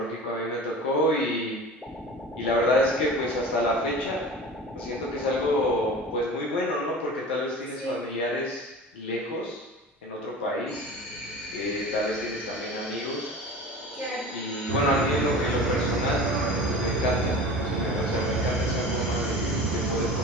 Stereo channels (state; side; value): normal; both; correlation 0.36